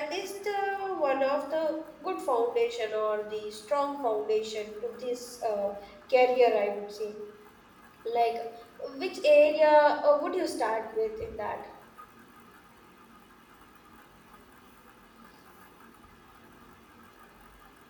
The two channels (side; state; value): both; identical; correlation 1.00